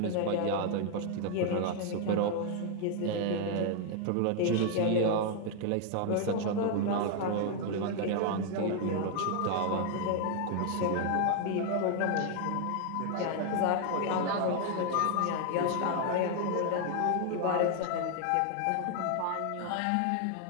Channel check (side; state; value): both; different; correlation 0.00